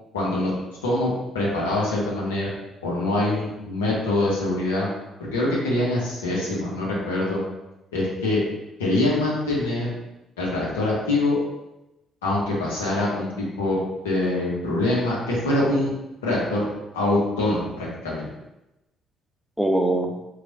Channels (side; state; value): both; normal; correlation 0.59